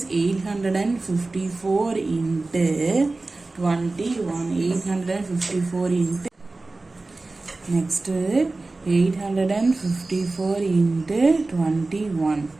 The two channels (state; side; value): quieter; left; 3.3 dB